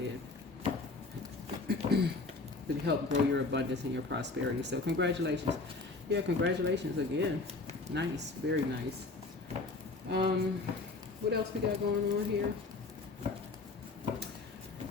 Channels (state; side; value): quieter; right; 3.6 dB